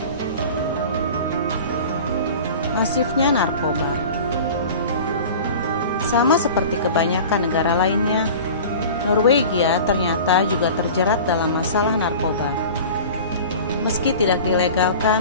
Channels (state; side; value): inverted; both; correlation -0.38